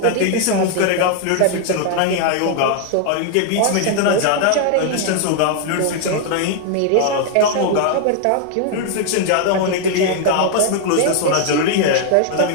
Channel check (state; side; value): different; both; correlation 0.00